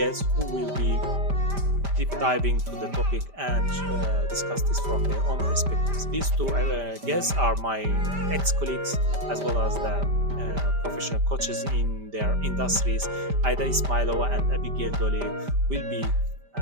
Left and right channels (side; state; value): left; late; 5.1 ms